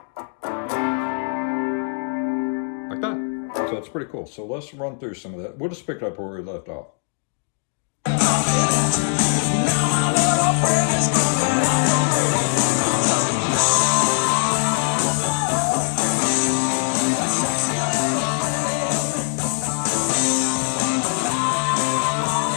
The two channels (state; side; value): silent; right; 61 dB below the other